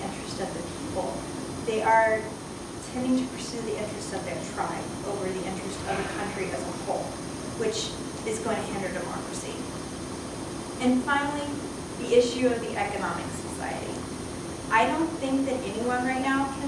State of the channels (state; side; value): identical; both; correlation 1.00